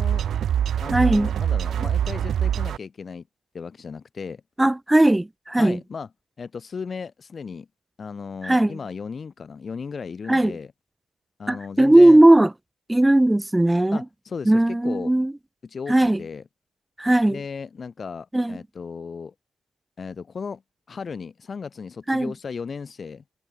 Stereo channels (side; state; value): both; normal; correlation 0.97